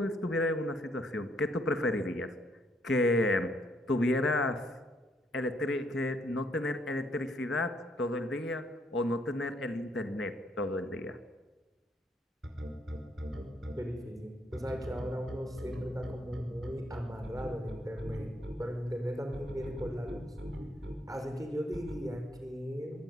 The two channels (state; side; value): normal; both; correlation 0.71